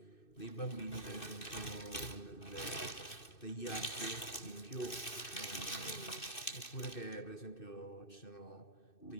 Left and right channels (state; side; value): late; right; 2.6 ms